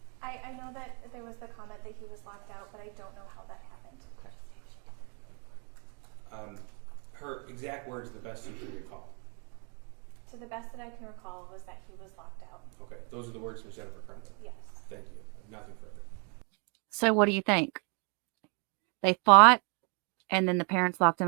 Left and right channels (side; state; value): left; quieter; 36.7 dB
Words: I know that there was the comment that he was locked out, but I don't know how that happened. Her exact words, the best you can recall. To the best that I can recall was that he was locked out. Okay, those are the words from Jennifer Crumbley. Yes. Thank you. Nothing further. So what do you think? They fought and then the parents locked him